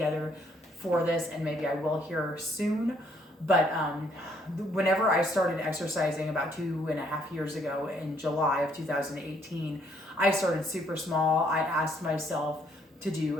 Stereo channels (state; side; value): normal; both; correlation 0.67